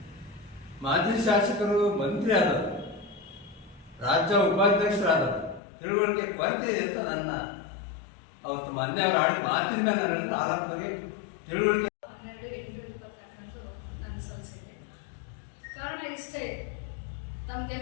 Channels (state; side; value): drops out; right; at 5.6 s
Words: ಮಾಜಿ ಶಾಸಕರು ಮಂತ್ರಿ ಆದವರು, ರಾಜ್ಯ ಉಪಾಧ್ಯಕ್ಷರಾದವರು, ತಿಳುವಳಿಕೆ ಕೊರತೆ ಇದೆ ಅಂತ ನನ್ನ ಅವತ್ತು ಮೊನ್ನೆ ಅವರು ಆಡಿದ ಮಾತಿನ ಮೇಲೆ ನನ್ನ ಆರೋಪಕ್ಕೆ ತಿಳುವಳಿಕೆ 12/8/2022 ನಾನು ಸಲ್ಲಿಸಿದೆ. ಕಾರಣ ಇಷ್ಟೇ,